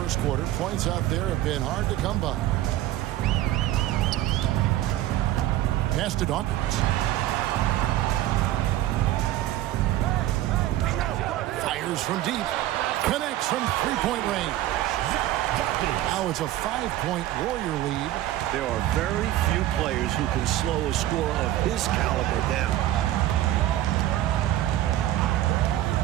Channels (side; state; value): left; quieter; 14.1 dB